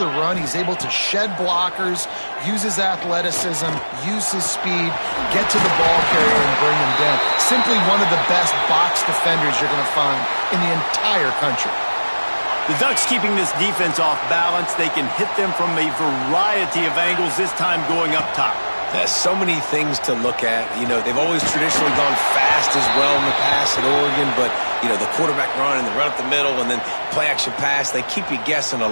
run. He's able to shed blockers, use his athleticism, use his speed, get to the ball carrier and bring him down. Simply one of the best box defenders you're going to find in the entire country. The Ducks keeping this defense off balance. They can hit them from a variety of angles, this time going up top. There's so many things to look at. You know, they've always traditionally gone fast as well in the past at Oregon, but, you know, the quarterback run and the run up the middle and then play-action pass, they keep you guessing a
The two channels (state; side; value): inverted; both; correlation -1.00